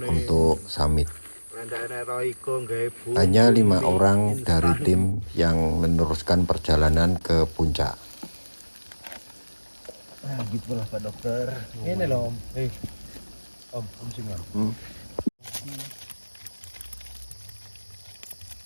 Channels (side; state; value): both; inverted; correlation -1.00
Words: untuk summit. Hanya 5 orang dari tim yang meneruskan perjalanan ke puncak. Nah, gitulah Pak Dokter. Ini loh, Om. Om sini Om.